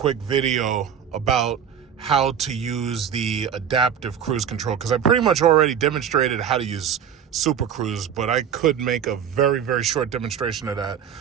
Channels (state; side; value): quieter; left; 8.4 dB